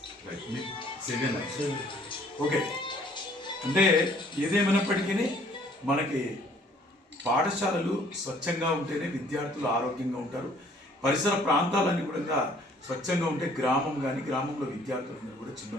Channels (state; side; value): normal; both; correlation 0.59